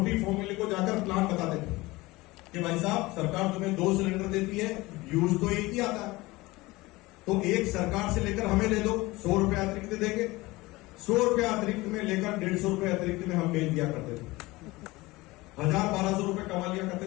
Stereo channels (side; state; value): right; quieter; 20.9 dB